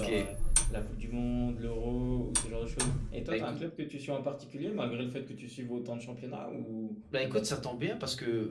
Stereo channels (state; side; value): identical; both; correlation 1.00